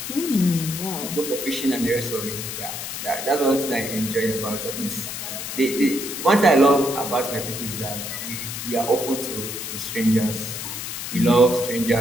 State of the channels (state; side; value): noise; left; hiss, 6 dB below the sound